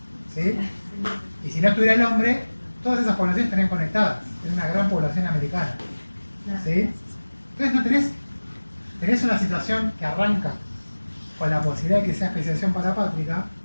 ¿Sí? Y si no estuviera el hombre, todas esas poblaciones estarían conectadas. Es una gran población americana. ¿Sí? Entonces no tenés una situación que arranca con la posibilidad de que sea especiación parapátrica,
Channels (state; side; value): inverted; both; correlation -1.00